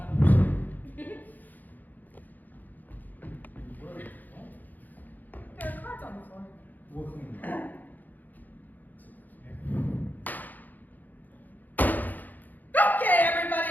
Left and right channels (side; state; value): right; late; 0.084 ms